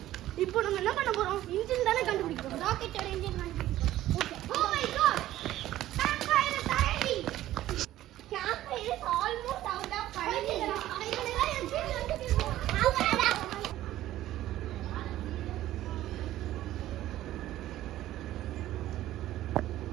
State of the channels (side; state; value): left; quieter; 14.2 dB